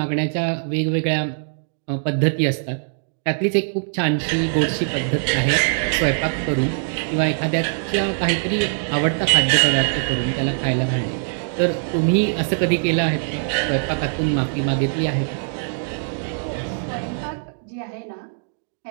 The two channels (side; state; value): left; silent; digital silence